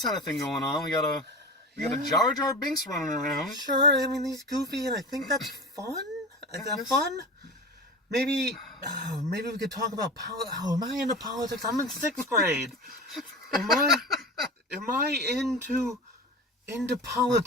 thing going on. We got a Jar Jar Binks running around. Sure, I mean, he's goofy, and I think that's fun. Is that fun? Maybe we could talk about am I into politics? I'm in 6th grade. Am I into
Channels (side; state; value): both; normal; correlation 0.30